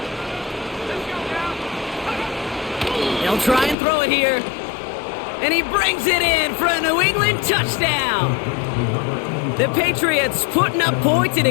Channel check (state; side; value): drops out; right; at 3.8 s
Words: They'll try and throw it here. And he brings it in for a New England touchdown. The Patriots putting up points in